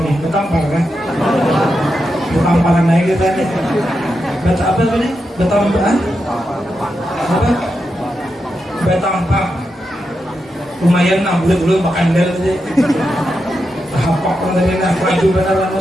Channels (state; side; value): normal; both; correlation 0.87